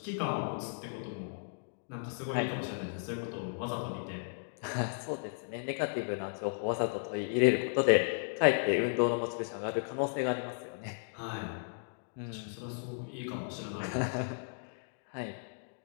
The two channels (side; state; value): right; silent; digital silence